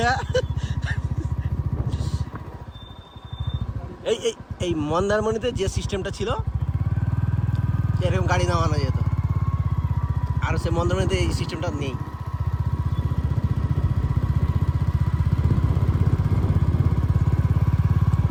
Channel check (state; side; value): identical; both; correlation 1.00